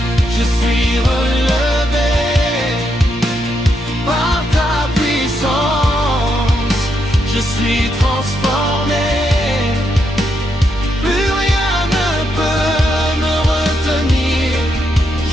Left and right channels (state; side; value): normal; both; correlation 0.80